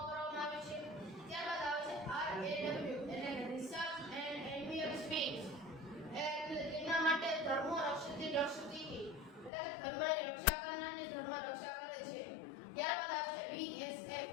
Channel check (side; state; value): right; drops out; at 9.5 s